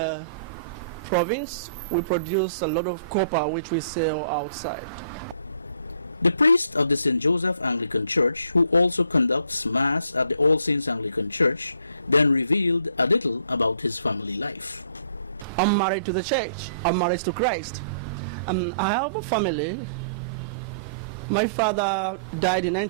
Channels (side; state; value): both; inverted; correlation -0.61